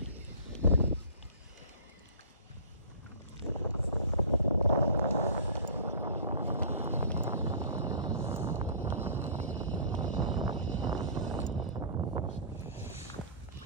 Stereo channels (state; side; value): inverted; both; correlation -0.41